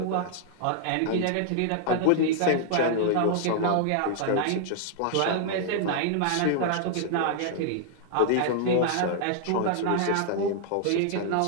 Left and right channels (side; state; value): both; different; correlation -0.01